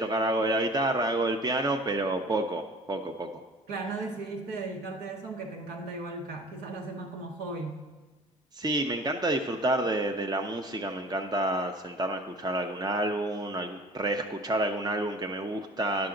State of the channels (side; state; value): both; normal; correlation 0.45